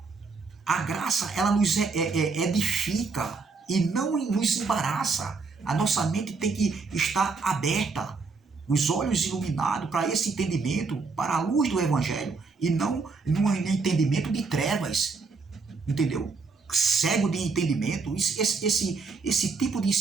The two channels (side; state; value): left; quieter; 4.5 dB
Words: A graça, ela nos edifica e não nos embaraça. A nossa mente tem que estar aberta, os olhos iluminados para esse entendimento, para a luz do Evangelho, e não num entendimento de trevas, entendeu? Cego de entendimento, esse tipo de